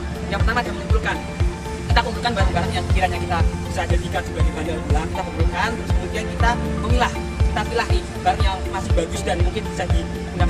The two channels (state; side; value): identical; both; correlation 1.00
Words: yang pertama adalah mengumpulkan. Kita kumpulkan barang-barang yang kiranya kita bisa jadikan sebagai bahan daur ulang, kita kumpulkan, terus kemudian kita memilah, kita pilih nih barang yang masih bagus dan mungkin bisa